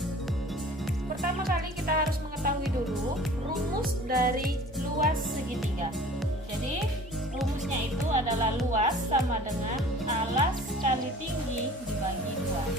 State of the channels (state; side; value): normal; both; correlation 0.46